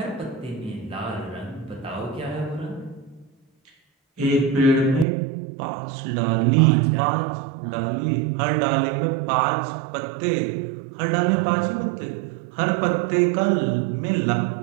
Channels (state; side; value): drops out; left; at 5.1 s